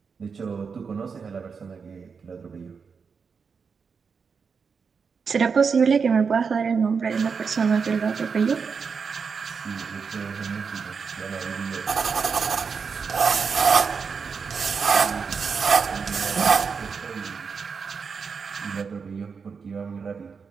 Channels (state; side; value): quieter; left; 5.7 dB